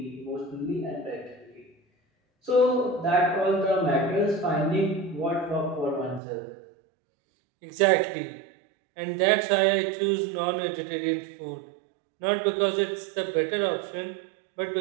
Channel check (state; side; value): drops out; left; at 6.2 s